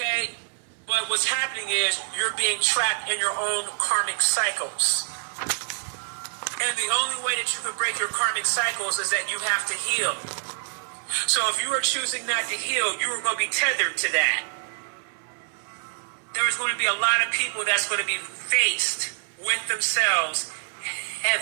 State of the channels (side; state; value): left; silent; 61 dB below the other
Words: But what's happening is you're being trapped in your own karmic cycles. And the only way that you can break your karmic cycles is that you have to heal. So if you are choosing not to heal, you are going to be tethered to that. There is going to be a lot of people that's going to be faced with themselves